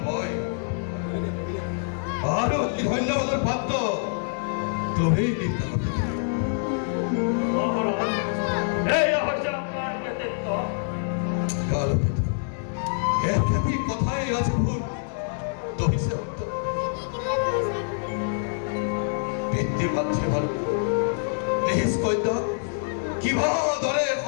মই, আৰু ধন্যবাদৰ পাত্ৰ তুমি। একেবি কথাই ৰাজভূৰ তহিছে পিতৃ মাতৃ বাৰু নিজ কন্যা কিবা দৰে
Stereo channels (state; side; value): silent; right; digital silence